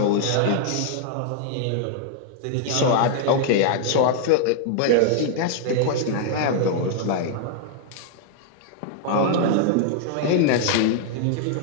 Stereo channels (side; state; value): both; different; correlation -0.01